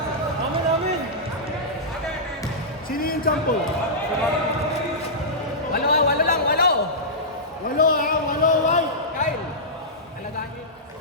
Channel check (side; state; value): both; normal; correlation -0.14